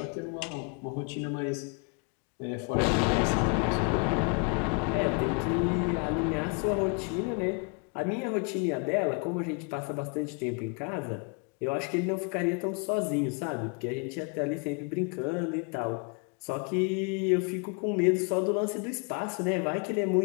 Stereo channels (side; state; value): right; quieter; 33.8 dB